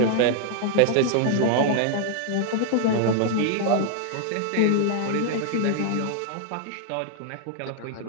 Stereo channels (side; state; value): both; different; correlation -0.01